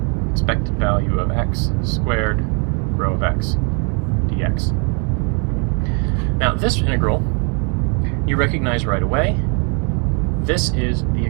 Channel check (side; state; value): left; quieter; 37.6 dB